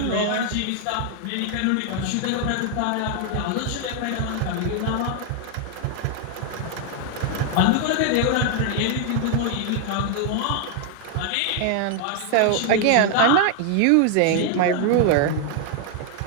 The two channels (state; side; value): different; both; correlation 0.00